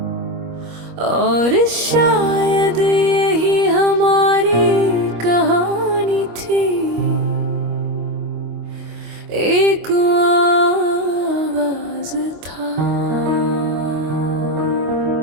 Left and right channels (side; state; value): left; late; 25 ms